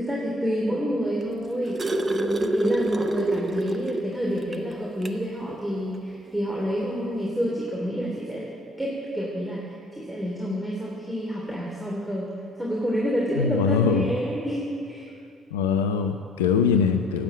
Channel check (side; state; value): both; normal; correlation 0.57